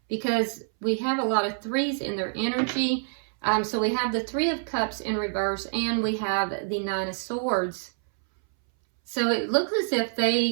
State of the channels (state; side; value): silent; left; 61 dB below the other